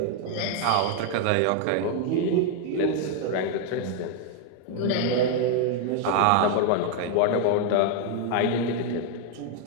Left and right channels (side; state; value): both; different; correlation 0.00